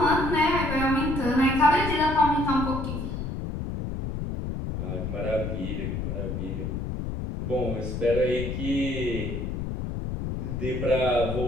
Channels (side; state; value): left; noise; rumble, 4 dB below the sound